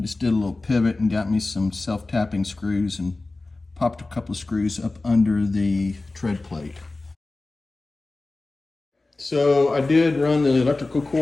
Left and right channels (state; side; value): quieter; right; 3.2 dB